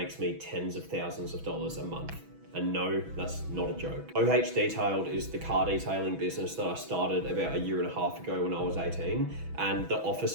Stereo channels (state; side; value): late; left; 6.1 ms